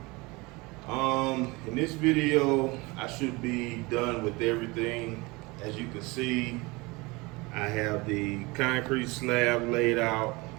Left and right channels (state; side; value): quieter; left; 24.5 dB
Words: In this video, I should be done with everything. As you can see, I have the concrete slab laid out.